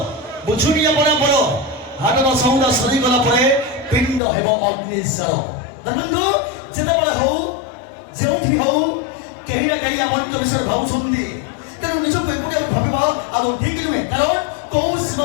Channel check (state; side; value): drops out; right; at 4.2 s